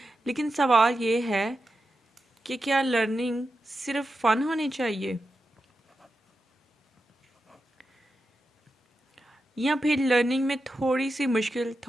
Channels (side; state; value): both; normal; correlation 0.90